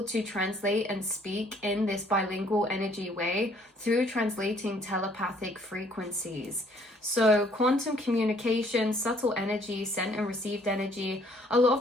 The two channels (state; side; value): normal; both; correlation 0.62